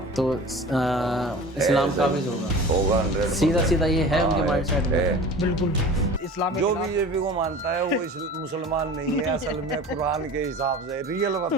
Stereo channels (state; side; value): normal; both; correlation 0.38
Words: तो इस्लाम काबिज होगा 100%। सीधा ये है उनके माइंडसेट में। बिल्कुल इस्लाम के जो खिलाफ- बीजेपी को मानता है वो मुसलमान नहीं है असल में, कुरान के हिसाब से रियल